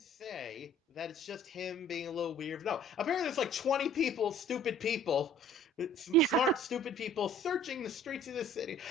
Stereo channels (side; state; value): both; normal; correlation 0.52